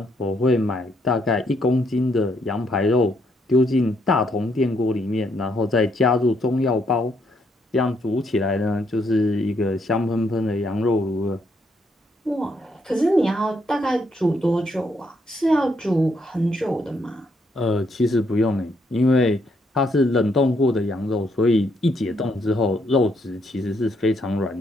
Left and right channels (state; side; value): normal; both; correlation 0.74